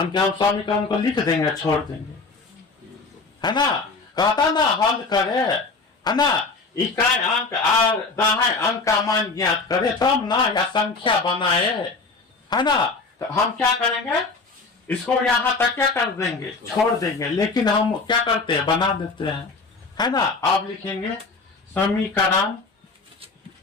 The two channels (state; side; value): quieter; right; 4.0 dB